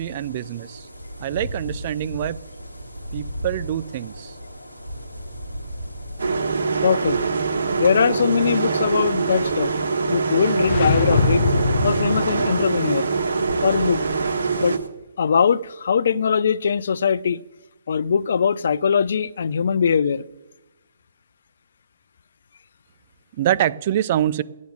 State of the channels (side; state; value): both; inverted; correlation -0.73